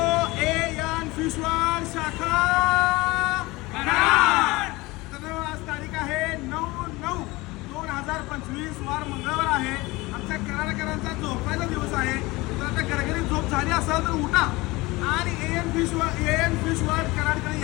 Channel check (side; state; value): right; quieter; 21.9 dB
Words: एन फिश वर्ल्ड शाखा कराड. तर आज तारीख आहे 9/9/2025 वार मंगळवार आहे. आमच्या कराडकरांचा झोपायचा दिवस आहे. तर आता घरघरी झोप झाली असेल तर उठा आणि एन फिश वर्ल्ड कराडकडे